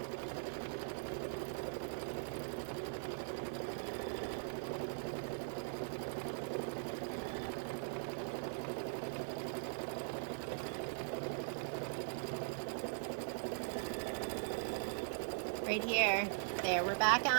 right here. There, we're back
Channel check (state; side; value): silent; left; digital silence